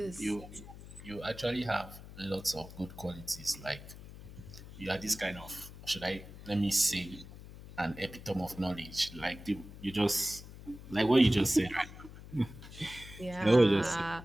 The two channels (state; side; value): noise; left; hum, 15 dB below the sound